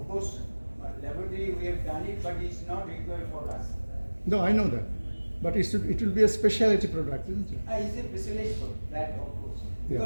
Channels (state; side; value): inverted; both; correlation -1.00